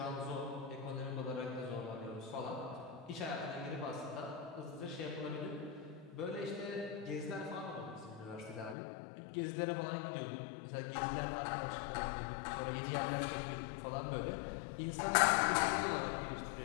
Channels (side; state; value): right; drops out; at 8.8 s